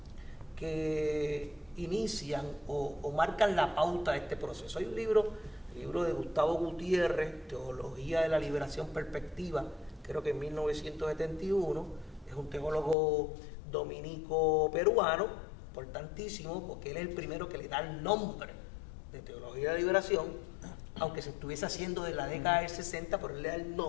que inician o marcan la pauta de este proceso. Hay un libro de Gustavo Gutiérrez, Teología de la Liberación Perspectiva, creo que en 1971, es un teólogo dominico peruano, importantísimo, porque él es el primero que le da el nombre de Teología de la Liberación, aunque se estuviese haciendo de la década del 60, pero él le da el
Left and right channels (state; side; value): drops out; right; at 13.0 s